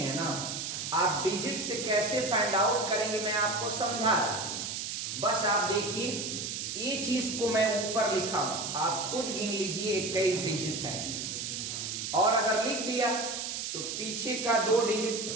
ना, आप डिजिट से कैसे फाइंड आउट करेंगे मैं आपको समझा रहा हूं। बस आप देखिए ये चीज को मैं ऊपर लिखा हूं, आप खुद गिन लीजिए 21 डिजिट है। और अगर लिख दिया तो पीछे का 2 डिजिट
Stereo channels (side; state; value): right; noise; hiss, 4 dB below the sound